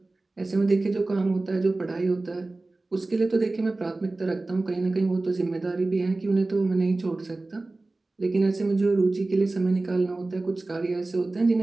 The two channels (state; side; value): quieter; left; 3.1 dB